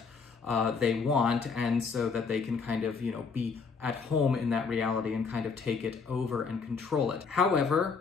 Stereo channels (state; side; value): quieter; right; 5.1 dB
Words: they want, and so that they can kind of, be at home in that reality and kind of take it over and control it.